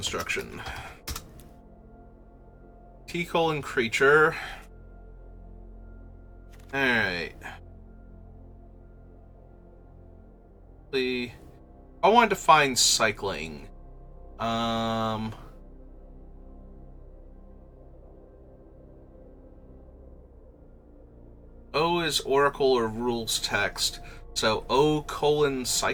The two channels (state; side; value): identical; both; correlation 1.00